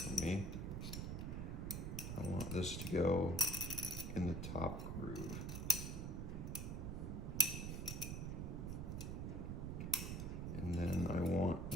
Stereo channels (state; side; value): noise; right; rumble, 3 dB below the sound